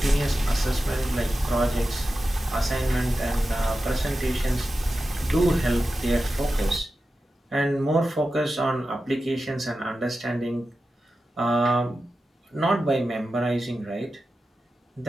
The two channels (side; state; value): both; normal; correlation 0.92